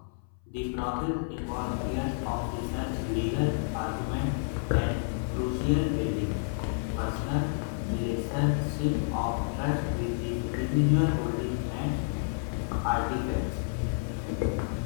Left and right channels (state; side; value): silent; right; 58 dB below the other